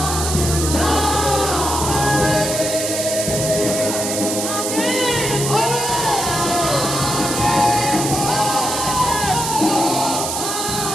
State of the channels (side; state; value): right; noise; hiss, 3 dB below the sound